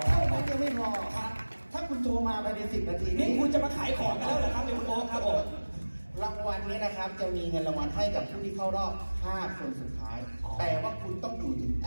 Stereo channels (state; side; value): inverted; both; correlation -1.00